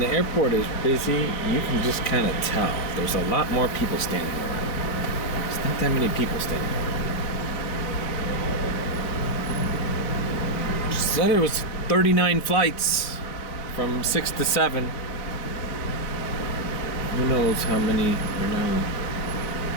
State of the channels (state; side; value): late; right; 3.9 ms